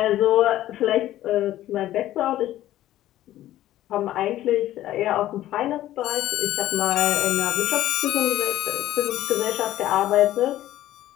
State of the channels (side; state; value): right; quieter; 13.9 dB